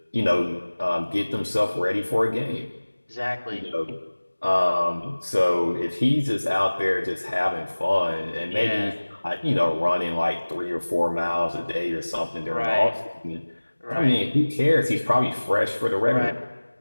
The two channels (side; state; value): both; inverted; correlation -1.00